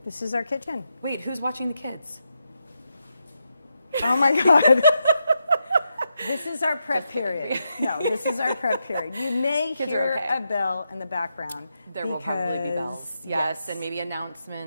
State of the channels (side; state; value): both; inverted; correlation -0.85